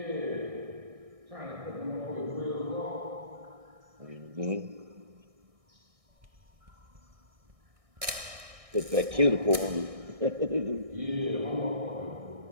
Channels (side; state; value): left; late; 1.6 ms